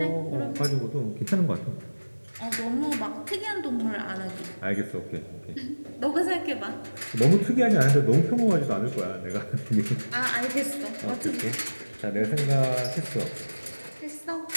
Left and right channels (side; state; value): both; inverted; correlation -1.00